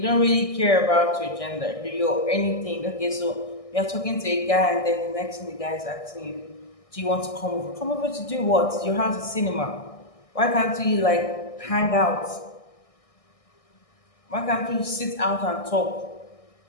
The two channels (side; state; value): right; late; 1.6 ms